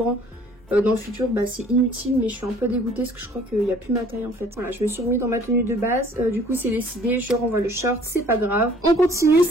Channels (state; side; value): normal; both; correlation 0.54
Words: dans le futur, bah c'est inutile. Mais je suis un peu dégoûtée parce que je crois qu'il n'y a plus ma taille en fait. Voilà, je me suis remis dans ma tenue de base. Du coup c'est décidé. Je renvoie le short. C'est pas grave. On continue.